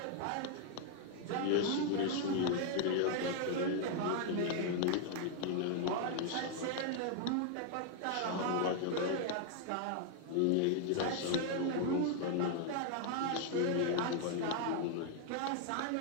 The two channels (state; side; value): different; both; correlation 0.00